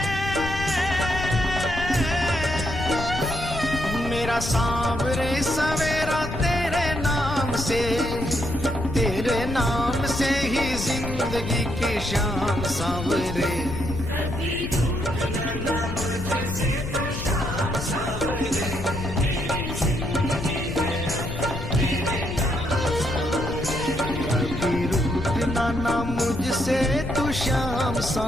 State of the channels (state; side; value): noise; left; rumble, 6 dB below the sound